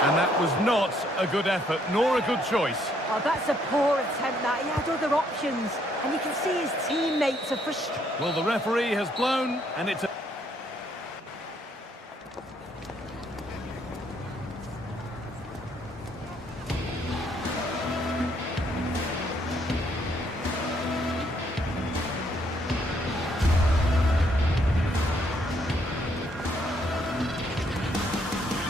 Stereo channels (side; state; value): both; normal; correlation 0.70